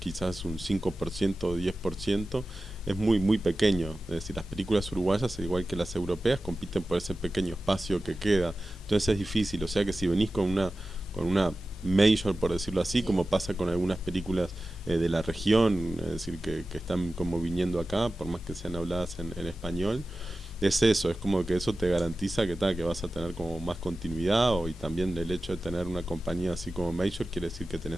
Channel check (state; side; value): normal; both; correlation 0.94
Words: un 5% o 10%, es muy pequeño. Es decir, las películas uruguayas, igual que las europeas, compiten por ese pequeño espacio que queda. Entonces es difícil. O sea que si venís con una major, por decirlo así, como pasa con algunas películas de la región, es decir, que están como viniendo acá, por más que sean habladas en español, es eso, es como que eso te garantiza que vas a tener como más continuidad, y también el hecho de tener una compañía así como Major quiere decir que